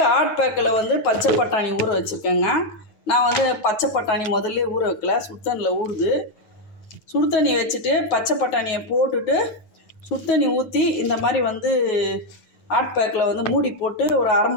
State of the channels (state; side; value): late; right; 9.3 ms